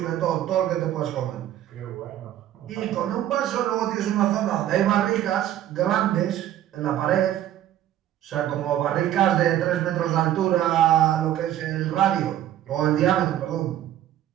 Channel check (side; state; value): left; quieter; 12.1 dB